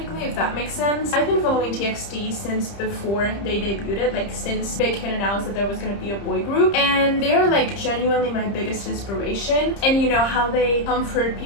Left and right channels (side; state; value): right; late; 30 ms